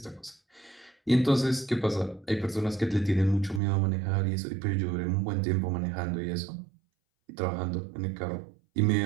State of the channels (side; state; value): left; drops out; at 3.6 s